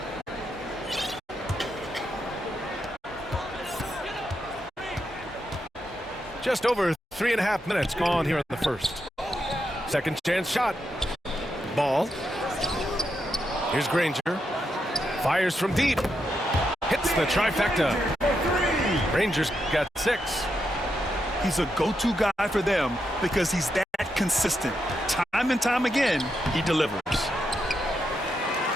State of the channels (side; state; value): both; normal; correlation 0.83